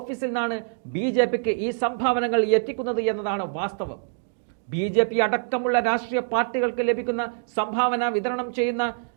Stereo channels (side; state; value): left; silent; digital silence